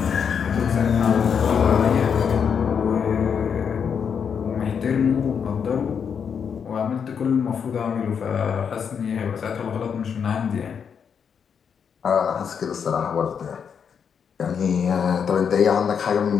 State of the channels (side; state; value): right; quieter; 7.0 dB